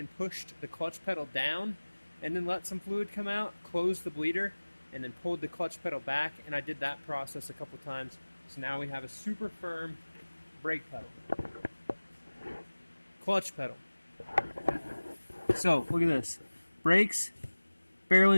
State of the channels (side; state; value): both; inverted; correlation -1.00